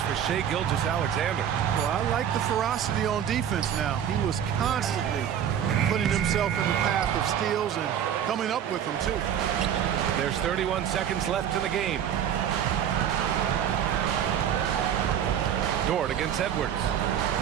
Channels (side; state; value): left; quieter; 9.3 dB